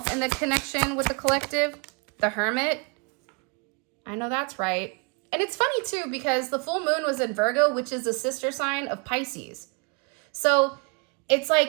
in the connection with the collective? The Hermit. I know that's right. And it's funny, too, because the full moon was in Virgo, which is the sister sign of Pisces. So it's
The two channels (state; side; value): quieter; left; 33.7 dB